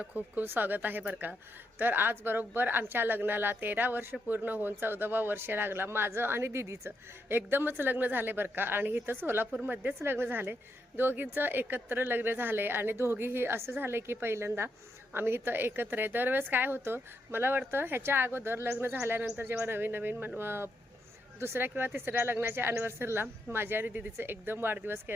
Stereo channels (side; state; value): both; normal; correlation 0.81